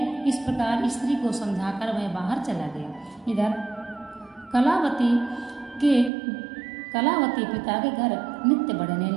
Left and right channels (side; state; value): left; drops out; at 6.1 s